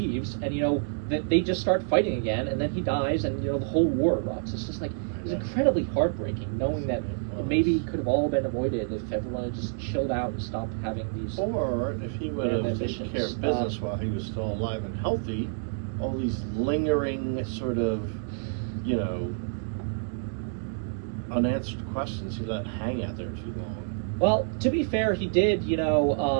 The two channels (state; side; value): silent; left; digital silence